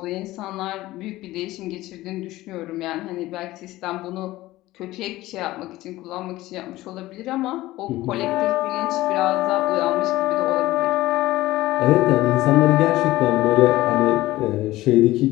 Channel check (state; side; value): quieter; right; 17.2 dB